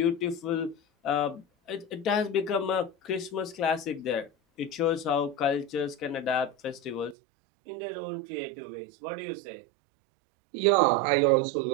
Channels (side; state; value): left; drops out; at 7.2 s